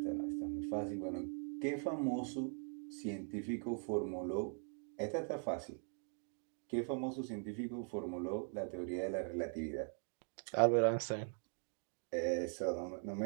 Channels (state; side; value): silent; left; 50 dB below the other